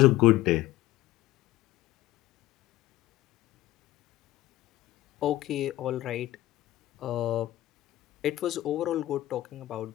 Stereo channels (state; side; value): quieter; right; 15.9 dB